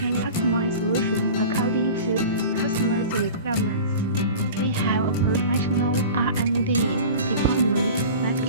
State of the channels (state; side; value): inverted; both; correlation -0.37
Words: customize solutions according to customers' requirements. We have a professional R&D department that